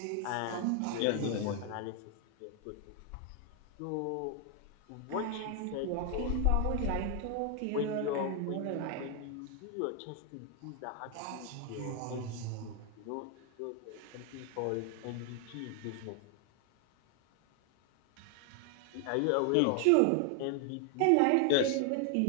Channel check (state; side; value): different; both; correlation 0.00